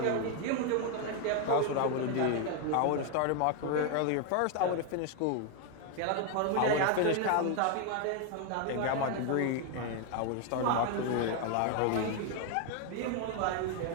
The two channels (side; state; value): both; different; correlation 0.01